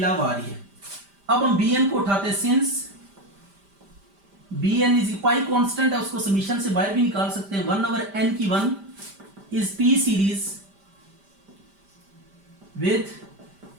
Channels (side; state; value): left; late; 5.0 ms